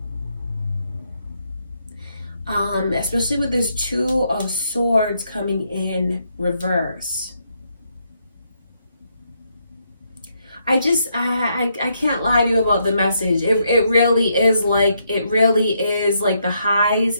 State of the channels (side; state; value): both; inverted; correlation -0.76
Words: Especially with this Two of Swords coming in reverse. I can't lie to you about the message. It really is like the highs